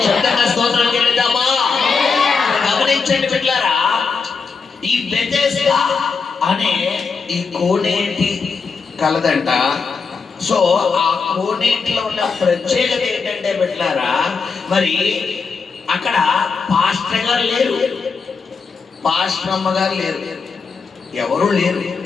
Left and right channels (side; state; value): right; quieter; 5.1 dB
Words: శబ్దంగా స్తోత్రం చెల్లిద్దామా? గమనించండి బిడ్డలారా, ఈ బెతెస్దా అనే ఈ కోనేటి కలదంట. సో ఆ కోనేటిలో ఉన్న ప్రత్యేకత ఏంటంటే బిడ్డలారా, మరి అక్కడ పాస్టర్ గారు లేరు, పాస్టర్ అమ్మ గారు లేరు, ఎవరు లేరు.